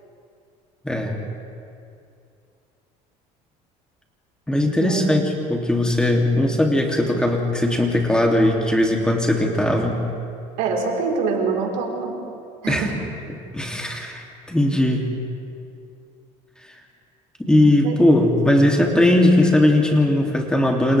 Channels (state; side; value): normal; both; correlation 0.79